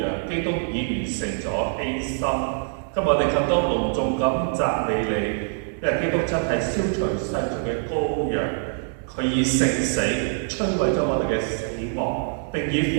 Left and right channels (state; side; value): silent; left; digital silence